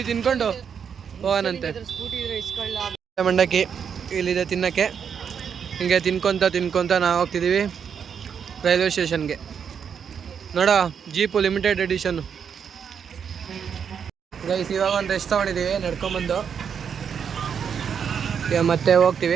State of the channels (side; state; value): left; quieter; 7.3 dB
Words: ತಿನ್ಕೊಂಡು ಹೋಗೋಣಂತೆ. ಮಂಡಕ್ಕಿ ಇಲ್ಲಿದೆ ತಿನ್ನಕ್ಕೆ. ಹಿಂಗೆ ತಿನ್ಕೊಂತ ನಾವು ಹೋಗ್ತಿದ್ದೀವಿ ರೈಲ್ವೆ ಸ್ಟೇಷನ್ಗೆ. ನೋಡೋ ಜೀಪು ಲಿಮಿಟೆಡ್ ಎಡಿಷನ್ನು. ಗೈಸ್ ಇವಾಗ ಒಂದು ರೆಸ್ಟ್ ತೊಗೊಂಡಿದ್ದೀವಿ ನಡ್ಕೊಂಬಂದು. ಈಗ ಮತ್ತೆ